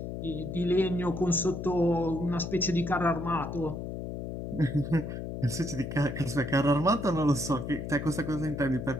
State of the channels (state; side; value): noise; left; hum, 6 dB below the sound